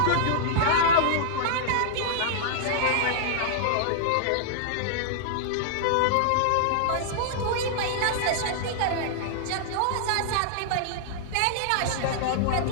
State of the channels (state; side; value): different; both; correlation -0.01